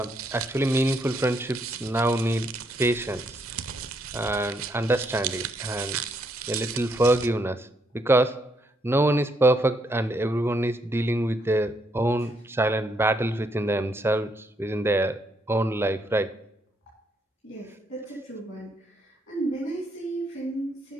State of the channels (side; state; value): both; normal; correlation 0.74